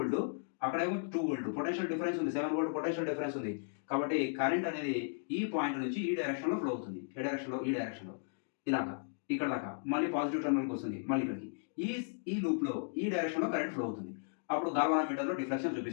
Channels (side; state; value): right; silent; digital silence